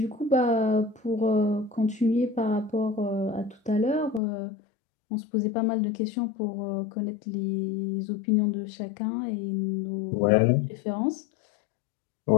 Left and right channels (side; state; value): right; drops out; at 4.2 s